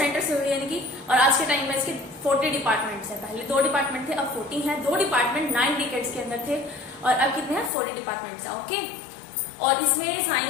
से हुई, यानी कि, और आज के टाइम में इसके 40 डिपार्टमेंट्स हैं। पहले 2 डिपार्टमेंट थे, अब 40 हैं। 2 डिपार्टमेंट 9 डिकेड्स के अंदर थे और अब कितने हैं? 40 डिपार्टमेंट्स हैं। ओके, और इसमें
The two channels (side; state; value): right; drops out; at 7.7 s